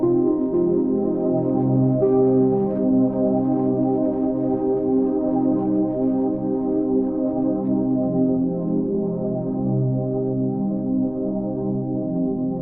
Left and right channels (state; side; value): noise; right; rumble, 21 dB below the sound